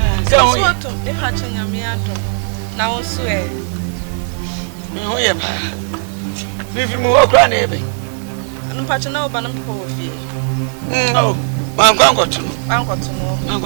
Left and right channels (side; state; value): left; silent; digital silence